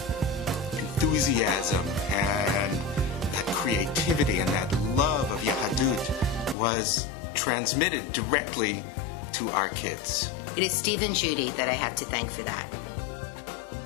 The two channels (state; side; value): drops out; right; at 6.6 s